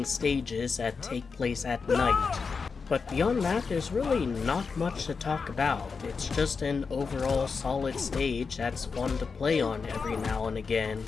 stages that take place at night. But beyond that, there's really not much to talk about. It's just an overall solid stage that's fun to play on every now and again.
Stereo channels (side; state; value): right; quieter; 5.1 dB